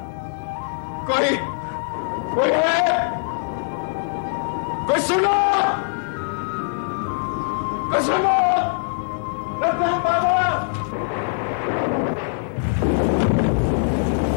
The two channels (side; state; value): right; silent; digital silence